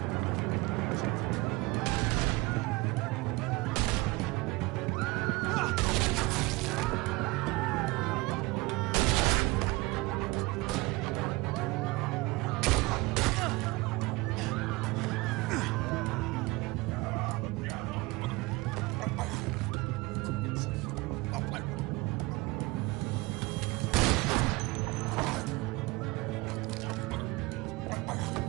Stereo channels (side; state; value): left; quieter; 23.0 dB